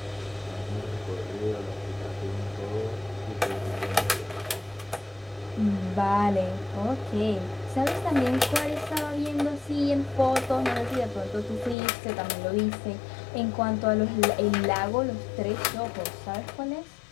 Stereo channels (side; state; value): right; drops out; at 11.8 s